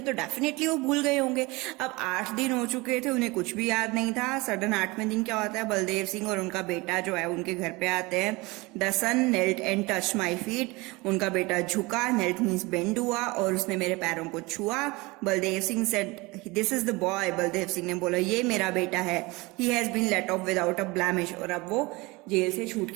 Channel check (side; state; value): left; quieter; 23.8 dB